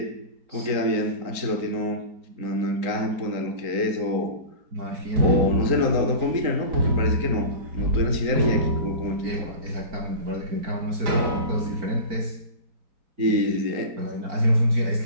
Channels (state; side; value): late; left; 3.9 ms